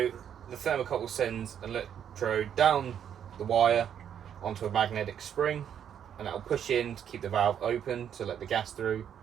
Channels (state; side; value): quieter; left; 9.0 dB